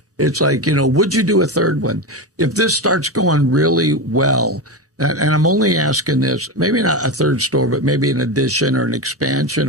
would you do a 3rd one? If this starts going really well, and I'm only asking this, maybe not a 3rd store, but maybe an addition or an expansion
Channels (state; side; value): normal; both; correlation 0.17